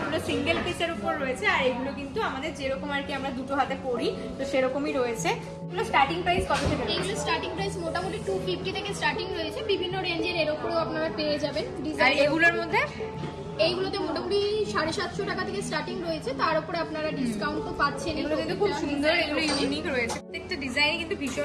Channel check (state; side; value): identical; both; correlation 1.00